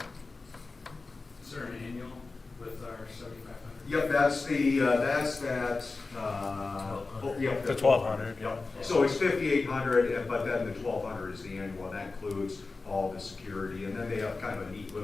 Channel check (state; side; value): quieter; right; 3.8 dB